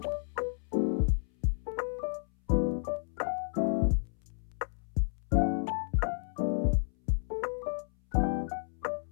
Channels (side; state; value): right; silent; 57 dB below the other